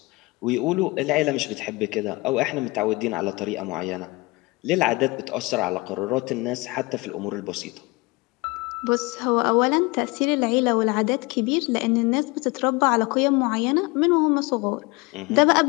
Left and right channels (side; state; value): right; quieter; 24.5 dB